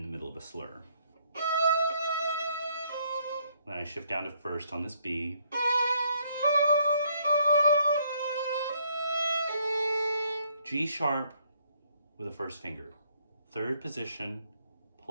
the middle of a slur. Then I shift down to first on this B. G sharp with a first finger. Third position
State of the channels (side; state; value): both; inverted; correlation -0.68